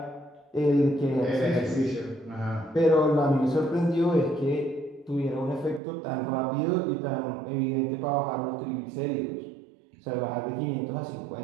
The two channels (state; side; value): drops out; left; at 5.8 s